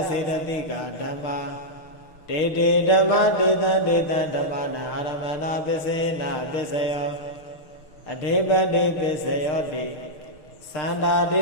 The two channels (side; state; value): right; late; 6.6 ms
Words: စေတသိကဓမ္မာတေတေဓမ္မတေတံတေတံဓမ္မနာအာရမဏပစ္စေနပစ္စယောအဓိပတိပစ္စယောတိသန္တာဓိ